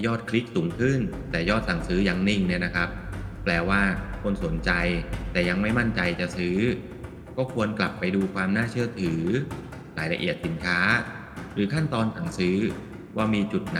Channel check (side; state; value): both; identical; correlation 1.00